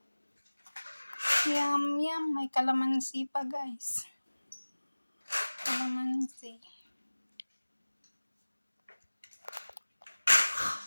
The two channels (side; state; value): both; inverted; correlation -1.00